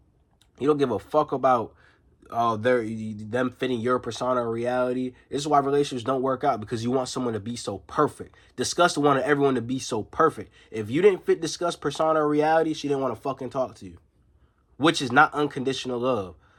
You don't give a fuck about them fitting your persona or reality. This is why relationships don't work out, because you want someone to be so perfect. Disgust wanted everyone to be so perfect. If you didn't fit Disgust persona or reality, she didn't want to fucking talk to you, which is not unconditional love.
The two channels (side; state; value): both; identical; correlation 1.00